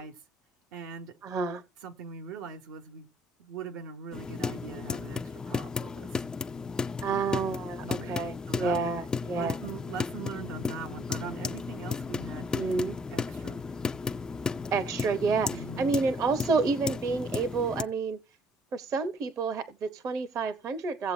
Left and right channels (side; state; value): both; normal; correlation 0.62